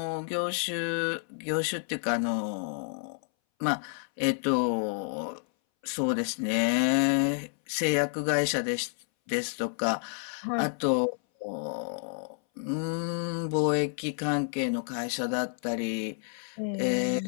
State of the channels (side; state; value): right; silent; 58 dB below the other